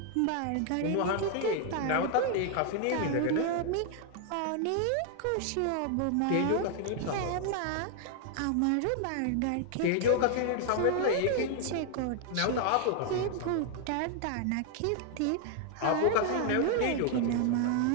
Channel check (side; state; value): both; different; correlation 0.00